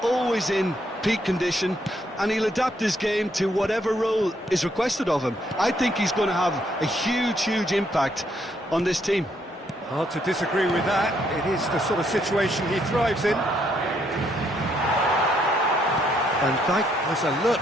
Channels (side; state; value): both; normal; correlation 0.72